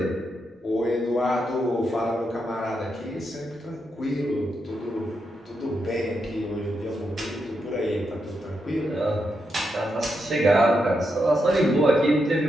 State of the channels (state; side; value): normal; both; correlation 0.83